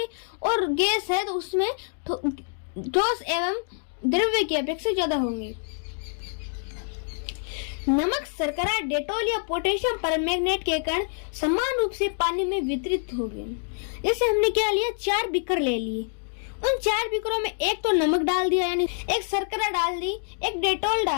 और गैस है तो उसमें ठोस एवं द्रव्य की अपेक्षा ज्यादा होंगे। नमक, शर्करा, डेटॉल या पोटेशियम परमैंगनेट के कण समान रूप से पानी में वितरित हो गए। जैसे हमने क्या लिया, 4 बीकर ले लिए, उन 4 बीकरों में एक तो नमक डाल दिया, यानी एक शर्करा डाल दी, एक डेटॉल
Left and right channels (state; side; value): silent; right; 61 dB below the other